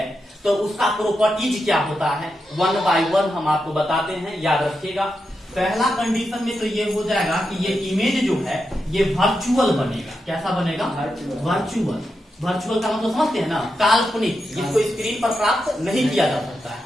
तो उसका प्रॉपर्टीज क्या होता है, 1 by 1 हम आपको बताते हैं, याद रखिएगा। पहला कंडीशन में तो ये हो जाएगा कि ये इमेज जो है ये वर्चुअल बनेगा। कैसा बनेगा, वर्चुअल। वर्चुअल का मतलब समझते हैं ना, काल्पनिक, जिसको स्क्रीन पर प्राप्त नहीं किया जा सकता है।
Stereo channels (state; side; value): normal; both; correlation 0.87